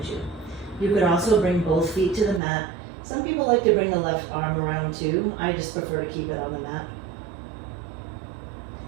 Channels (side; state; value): left; drops out; at 2.4 s